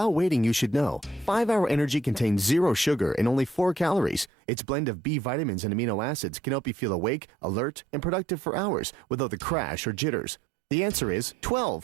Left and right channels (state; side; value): drops out; left; at 4.3 s